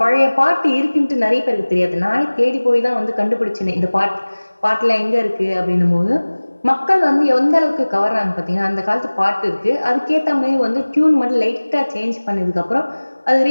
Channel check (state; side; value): inverted; both; correlation -1.00